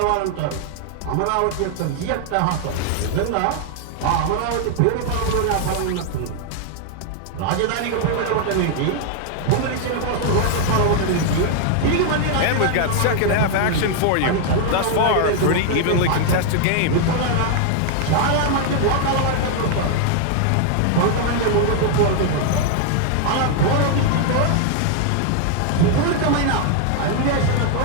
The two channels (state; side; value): different; both; correlation 0.00